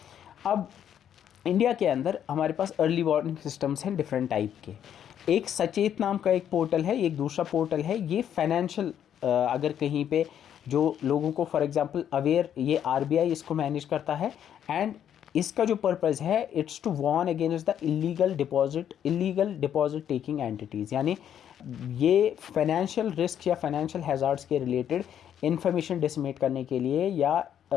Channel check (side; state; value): right; quieter; 9.6 dB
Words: अब इंडिया के अंदर हमारे पास अर्ली वार्निंग सिस्टम्स हैं डिफरेंट टाइप के। एक सचेत नाम का एक पोर्टल है, एक दूसरा पोर्टल है ये फाइनेंशियल, अगर कहीं पे जो लोगों को फॉर एग्जांपल अवेयर, ये RBI इसको मैनेज करता है। एंड इसका जो पर्पज़ है, it's to warn against the illegal deposit taking entities, यानी ये फाइनेंशियल रिस्क या फाइनेंशियल हैज़ार्ड्स के रिलेटेड इंफॉर्मेशन डिसमिनेट करने के लिए, या